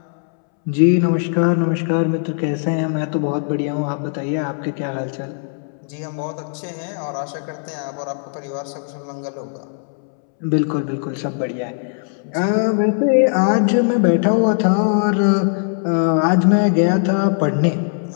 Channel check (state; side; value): silent; right; 66 dB below the other